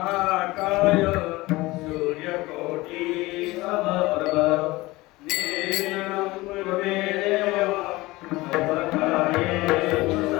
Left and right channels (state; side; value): quieter; right; 20.4 dB